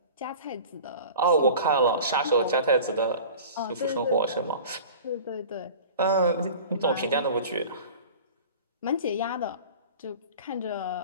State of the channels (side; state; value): both; inverted; correlation -0.39